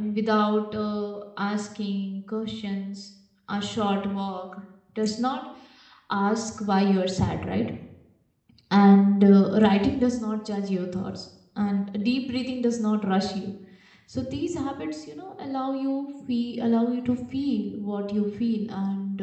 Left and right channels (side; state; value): both; identical; correlation 1.00